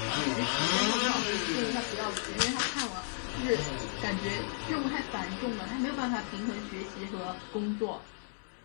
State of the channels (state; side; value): silent; right; digital silence